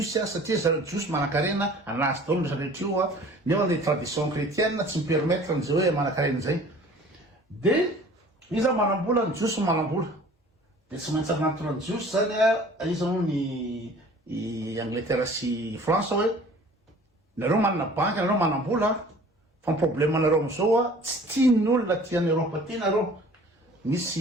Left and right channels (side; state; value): both; normal; correlation 0.48